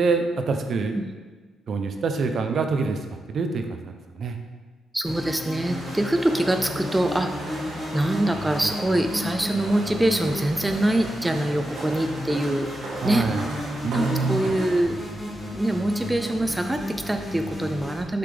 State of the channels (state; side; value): normal; both; correlation 0.89